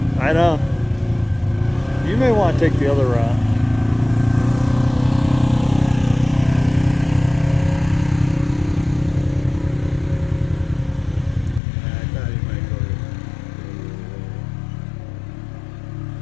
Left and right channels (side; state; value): right; drops out; at 11.6 s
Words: I know. You may want to take the other route. I thought you might